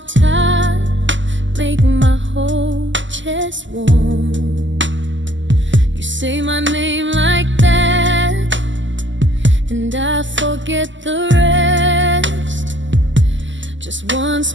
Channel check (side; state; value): left; late; 0.54 ms